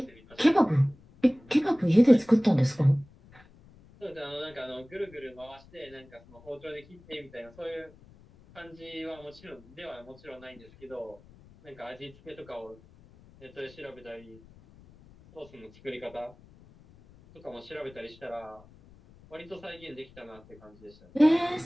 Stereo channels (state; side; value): noise; left; rumble, 24 dB below the sound